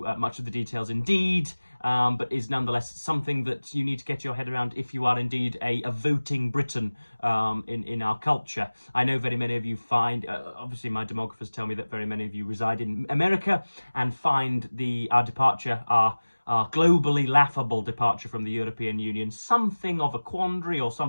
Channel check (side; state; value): both; inverted; correlation -1.00